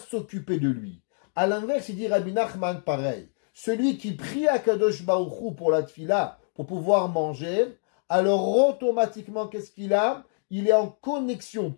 de lui. À l'inverse, il dit Rabbi Nachman pareil. Celui qui prie à Kadosh Baruch Hu pour la tfila, pour pouvoir manger, alors automatiquement, qu'est-ce qu'il a? Il est en connexion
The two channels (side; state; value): right; silent; 61 dB below the other